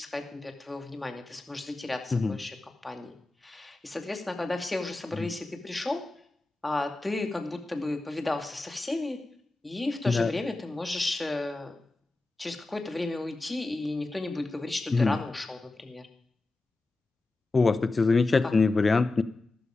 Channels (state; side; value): quieter; right; 3.1 dB